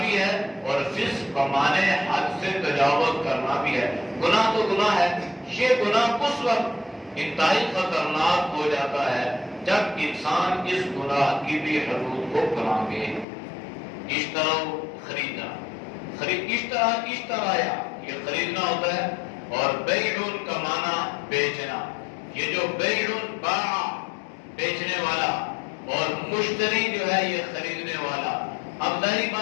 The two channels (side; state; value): right; drops out; at 13.2 s